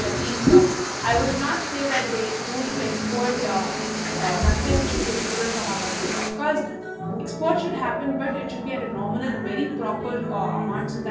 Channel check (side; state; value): both; identical; correlation 1.00